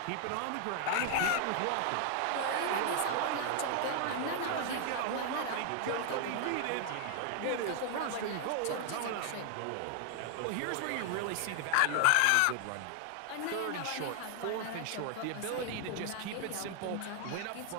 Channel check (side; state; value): both; different; correlation 0.00